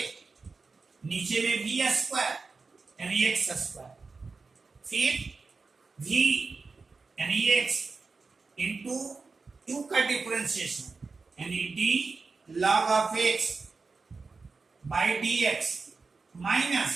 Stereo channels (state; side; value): quieter; left; 4.3 dB